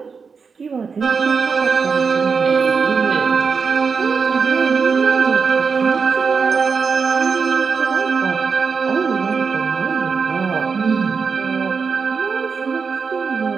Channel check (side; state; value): left; quieter; 5.4 dB